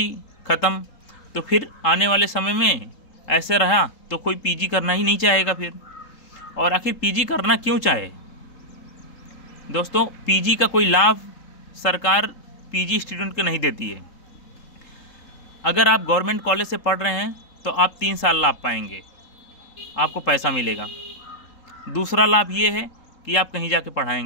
ख़त्म। तो फिर आने वाले समय में ऐसे रहा तो कोई PG करना ही नहीं चाहेगा फिर। और आखिर PG करना क्यों चाहे? दोस्तों, PG का कोई लाभ सरकार PG स्टूडेंट को नहीं देती है। अगर आप गवर्नमेंट कॉलेज से पढ़ रहे हैं तो आप 3 साल लाभ पाएंगे, आपको पैसा मिलेगा। दूसरा लाभ ये है कि आप कहीं जाके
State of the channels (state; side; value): late; right; 3.7 ms